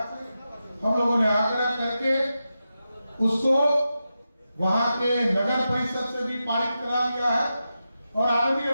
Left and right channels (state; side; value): inverted; both; correlation -0.90